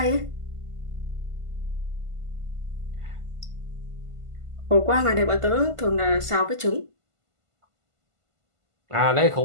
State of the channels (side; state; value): left; late; 1.5 ms